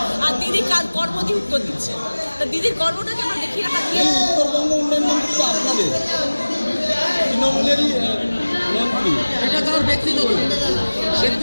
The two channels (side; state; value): both; inverted; correlation -1.00